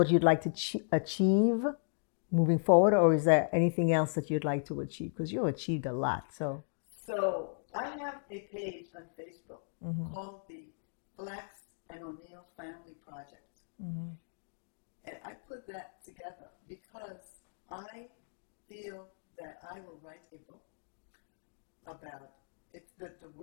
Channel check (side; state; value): right; silent; digital silence